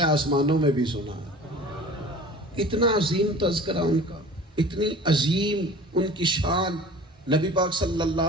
آسمانوں میں بھی سنا ہے. اتنا عظیم تذکرہ ان کا, اتنی عظیم ان کی شان. نبی پاک صلی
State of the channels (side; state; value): both; normal; correlation 0.42